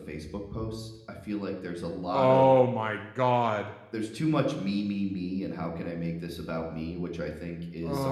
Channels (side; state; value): both; identical; correlation 1.00